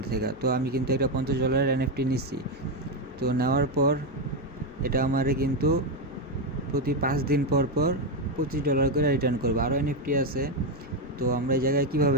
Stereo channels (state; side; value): normal; both; correlation 0.07